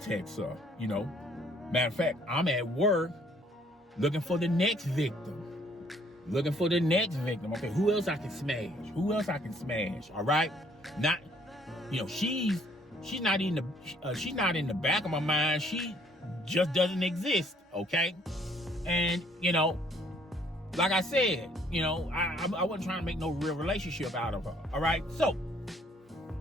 her, you know. Matter of fact, I'm at work looking for the next victim. Okay, who else I can smash? All right? Not, you know, she's not in the back of my mind. She just doesn't exist, okay? And, you know, like I said, you know, I wasn't trying to make no real relationship out of her, all right? So,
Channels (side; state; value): both; normal; correlation 0.63